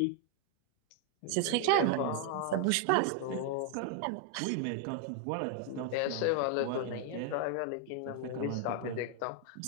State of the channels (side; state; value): both; different; correlation 0.00